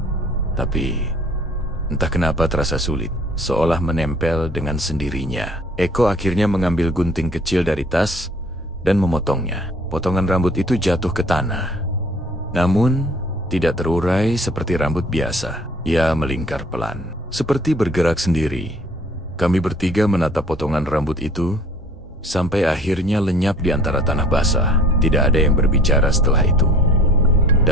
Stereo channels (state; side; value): normal; both; correlation 0.52